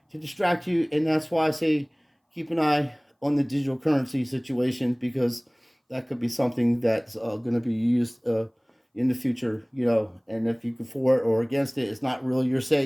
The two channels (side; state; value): both; identical; correlation 1.00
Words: to distract you, and that's why I say keep an eye on the digital currency situation, because that could be something that's going to be used in the future, and if you can for it or against it, it's not really your